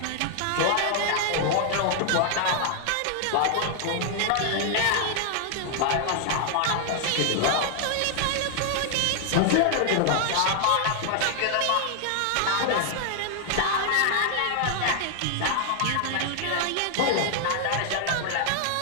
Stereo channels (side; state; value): both; different; correlation 0.00